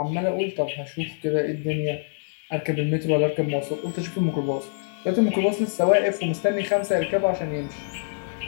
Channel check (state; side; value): silent; right; digital silence